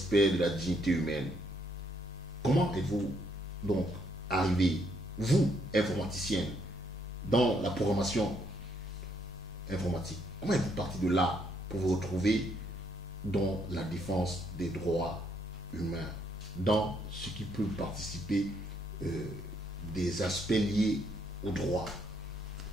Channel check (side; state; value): both; normal; correlation 0.72